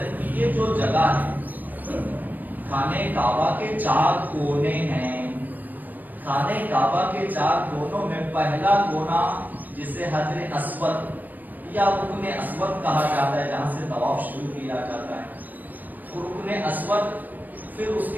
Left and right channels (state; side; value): late; left; 0.084 ms